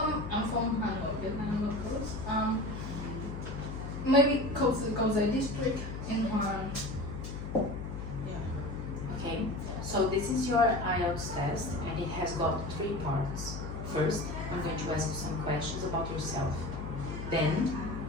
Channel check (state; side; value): noise; left; hum, 7 dB below the sound